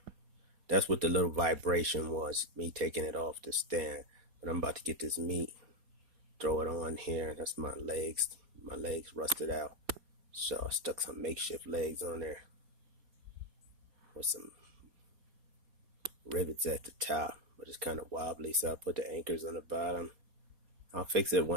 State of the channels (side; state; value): left; late; 4.2 ms